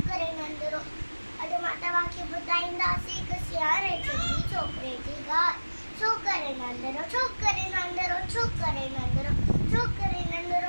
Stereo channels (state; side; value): inverted; both; correlation -1.00